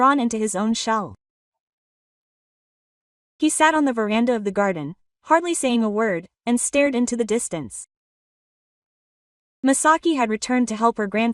into his own shell. He sat on the veranda of the garden, hardly saying a word, and stared into the distance. Misaki had returned to help her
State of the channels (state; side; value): identical; both; correlation 1.00